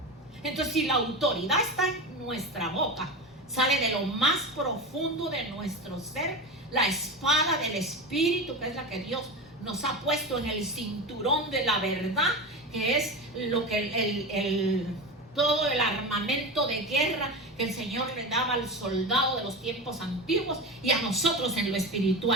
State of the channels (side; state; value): both; normal; correlation 0.24